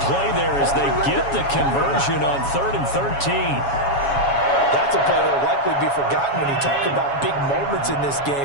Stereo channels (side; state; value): right; late; 7.2 ms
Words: play there as they get the conversion on 3rd and 13. That's a play that will likely be forgotten when you talk about big moments in this